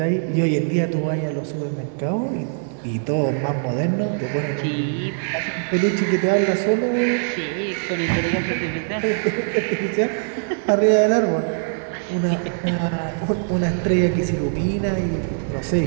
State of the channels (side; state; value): left; silent; 61 dB below the other